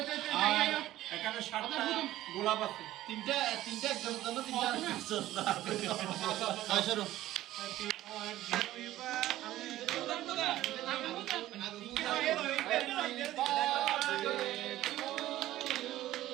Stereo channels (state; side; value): quieter; left; 14.8 dB